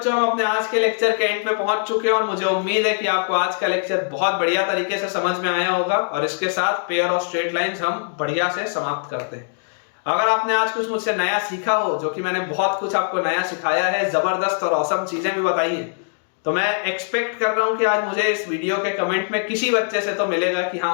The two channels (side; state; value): right; silent; digital silence